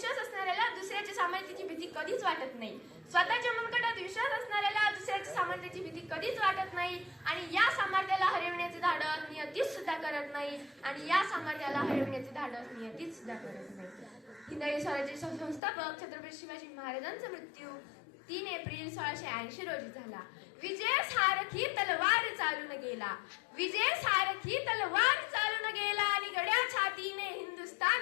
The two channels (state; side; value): drops out; right; at 15.6 s